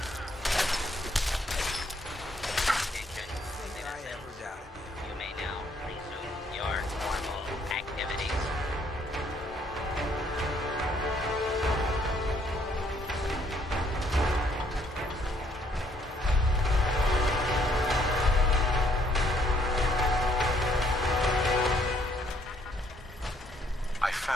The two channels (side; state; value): both; normal; correlation 0.67